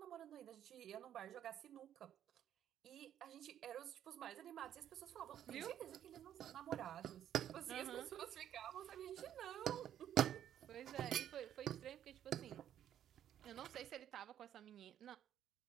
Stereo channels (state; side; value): quieter; left; 10.6 dB